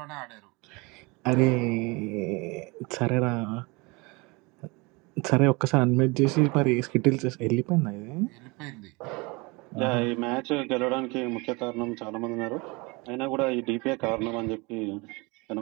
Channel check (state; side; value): quieter; left; 26.4 dB